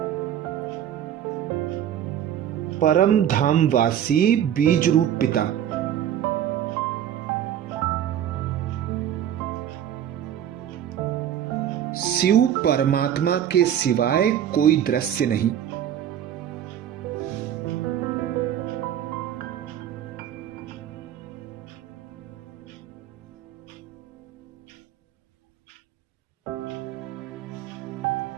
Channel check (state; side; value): quieter; left; 10.3 dB